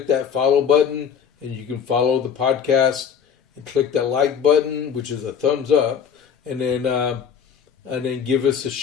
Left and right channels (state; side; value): quieter; right; 7.5 dB